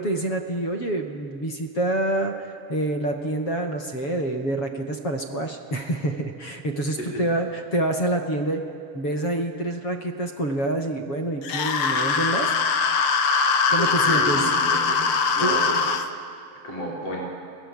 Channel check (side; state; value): right; late; 7.2 ms